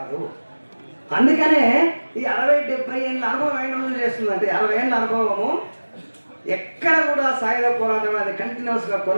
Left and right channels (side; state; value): both; inverted; correlation -1.00